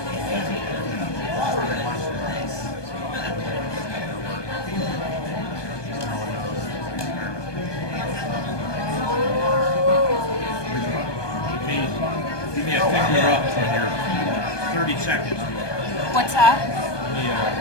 me a finger up when you're 30 seconds. What's that? Give me a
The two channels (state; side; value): late; right; 1.2 ms